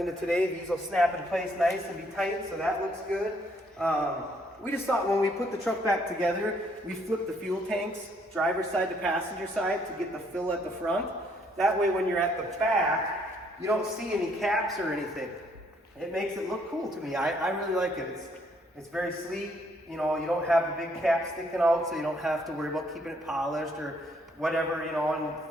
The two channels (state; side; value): normal; both; correlation 0.68